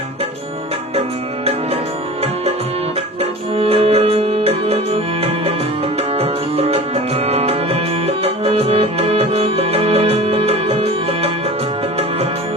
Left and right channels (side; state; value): both; normal; correlation 0.37